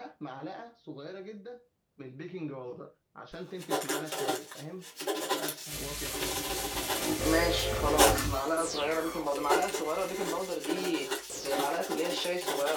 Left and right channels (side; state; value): both; identical; correlation 1.00